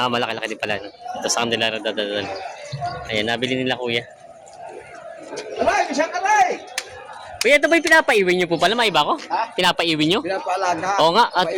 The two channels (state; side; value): identical; both; correlation 1.00